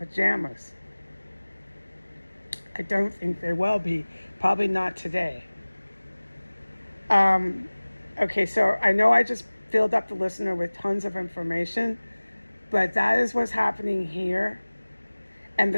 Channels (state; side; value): inverted; both; correlation -1.00